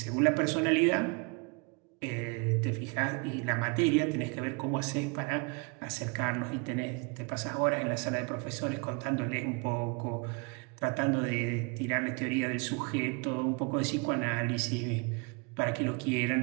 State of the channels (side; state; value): left; quieter; 31.7 dB